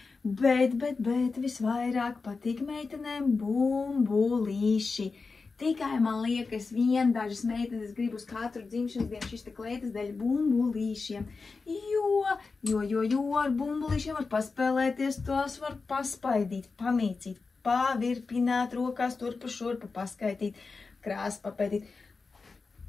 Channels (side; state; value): right; quieter; 4.3 dB